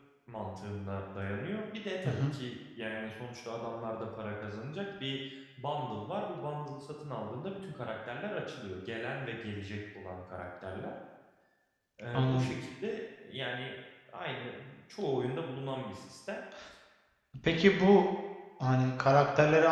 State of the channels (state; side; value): identical; both; correlation 1.00